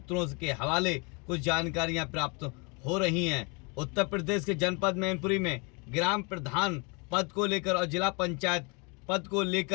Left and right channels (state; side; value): quieter; right; 31.7 dB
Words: के हवाले कुछ जानकारियां प्राप्त हो रही हैं। उत्तर प्रदेश के जनपद मैनपुरी में ग्राम प्रधान पद को लेकर और जिला पंचायत पद को